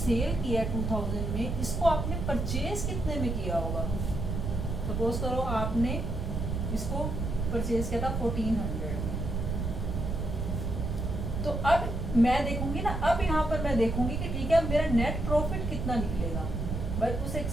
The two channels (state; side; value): noise; right; rumble, 2 dB below the sound